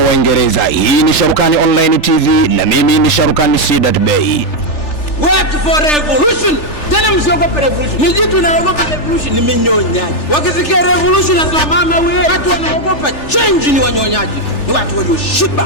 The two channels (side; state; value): right; late; 3.4 ms